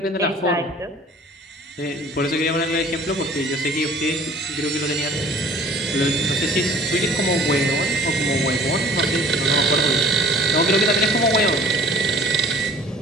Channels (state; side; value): normal; both; correlation 0.50